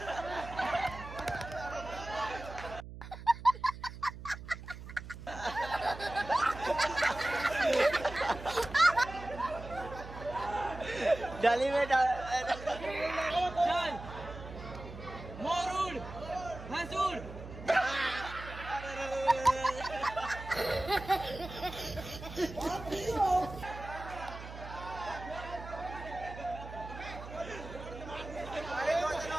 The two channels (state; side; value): noise; right; hum, 12 dB below the sound